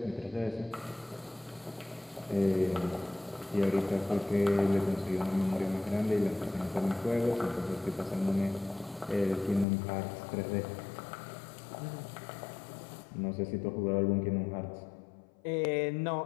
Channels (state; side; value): drops out; right; at 9.7 s